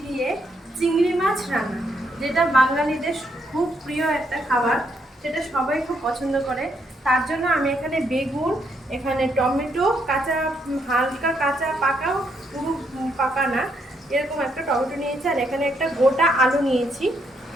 দিয়ে চিংড়ি মাছ রান্না, যেটা বাঙালিদের খুব প্রিয় একটা খাবার, সেটা সবাই খুব পছন্দ করে। তার জন্য আমি এখানে বেগুন, এখানে টমেটো কাঁচা, হালকা কাঁচা পাকা, পুরো পাকা না, এরকম একটা টমেটো নিয়েছি। আর এখানে একটা গোটা আলু নিয়েছি।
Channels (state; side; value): normal; both; correlation 0.75